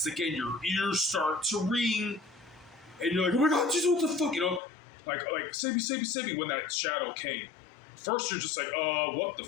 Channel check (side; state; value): right; drops out; at 4.6 s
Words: Again, your ears start to ring, and you're like, "Oh my god, Jesus, what the fuck?" Like save me when that shadow came. First, you're just like, what the